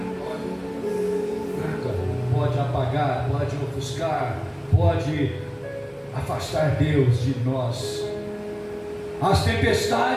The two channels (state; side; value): identical; both; correlation 1.00